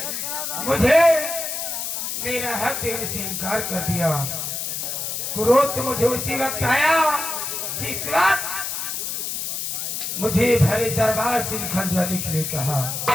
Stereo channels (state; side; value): noise; left; hiss, 3 dB below the sound